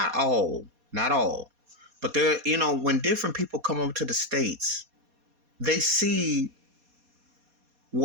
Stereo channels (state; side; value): late; left; 4.2 ms